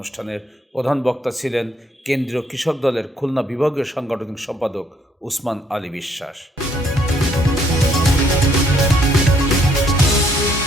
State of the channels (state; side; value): normal; both; correlation 0.68